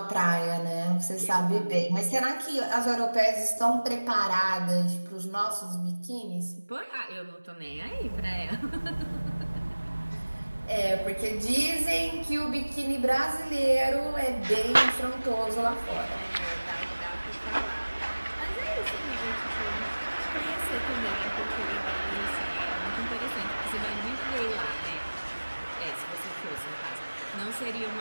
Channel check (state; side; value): inverted; both; correlation -1.00